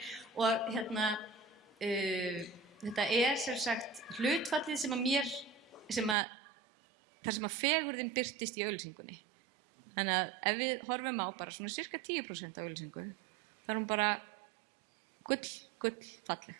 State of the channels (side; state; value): left; drops out; at 6.2 s